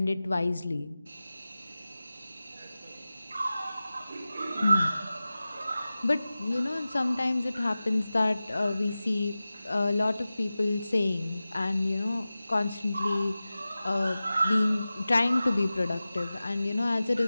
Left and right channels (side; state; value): both; inverted; correlation -0.96